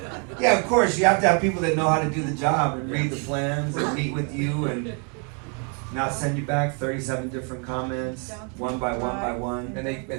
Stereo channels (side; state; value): left; quieter; 37.3 dB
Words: Yeah, of course, you have to have people that know how to do the job and read the plans and meet with you and not send you back 37 different comments, one by one by one. And they